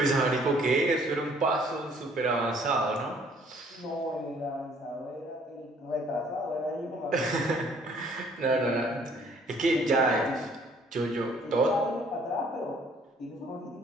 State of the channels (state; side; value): normal; both; correlation 0.60